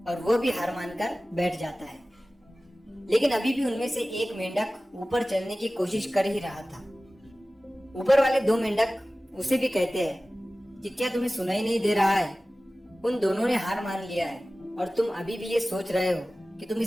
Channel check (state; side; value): normal; both; correlation 0.97